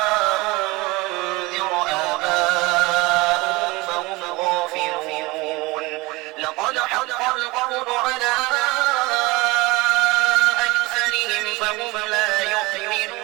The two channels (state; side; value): quieter; left; 22.8 dB